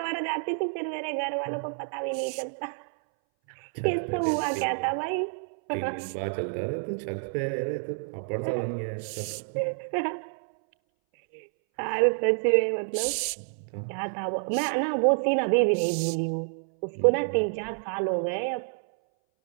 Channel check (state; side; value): silent; left; 59 dB below the other